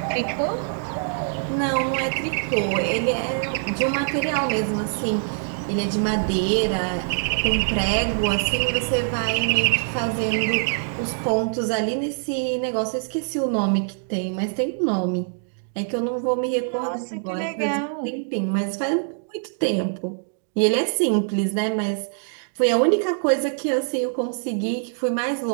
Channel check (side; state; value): left; silent; digital silence